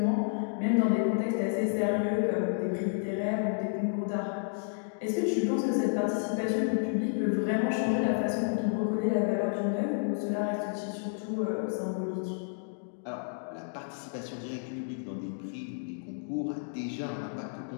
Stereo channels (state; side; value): silent; right; digital silence